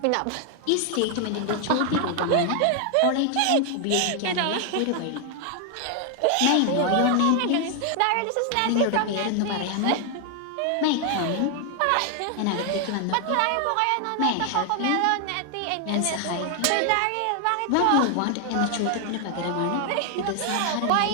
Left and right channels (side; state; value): both; different; correlation 0.00